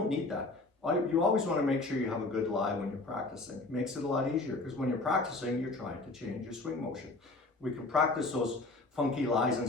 need that. You always want to make sure you have a good lie when you're practicing. It makes it a lot easier because when you're practicing, you're trying to change your swing motion. We can practice those funky lies and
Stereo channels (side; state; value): right; quieter; 3.2 dB